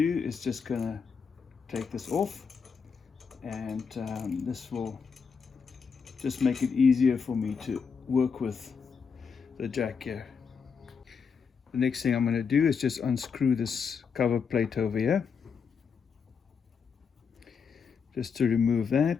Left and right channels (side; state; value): right; quieter; 6.0 dB